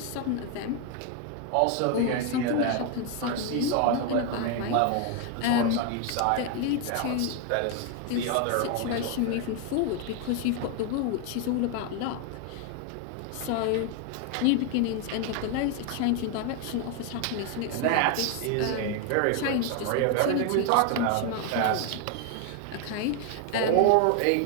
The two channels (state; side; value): different; both; correlation 0.01